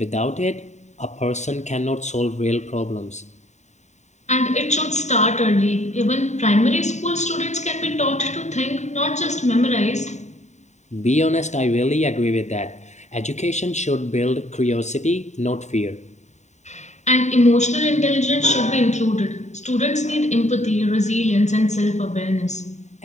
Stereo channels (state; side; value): late; right; 0.34 ms